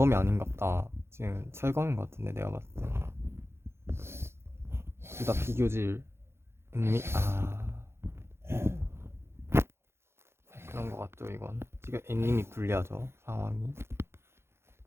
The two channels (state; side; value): late; left; 0.12 ms